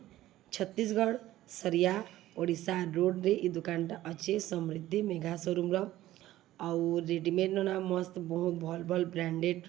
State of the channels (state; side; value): quieter; left; 15.0 dB